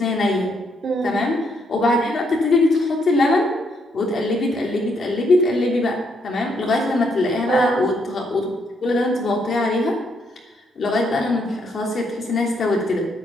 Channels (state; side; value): normal; both; correlation 0.74